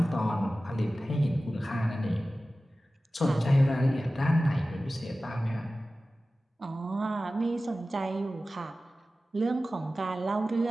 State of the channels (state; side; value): normal; both; correlation 0.96